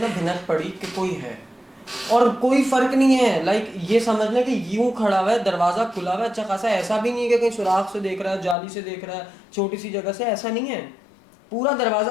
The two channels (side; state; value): right; drops out; at 8.6 s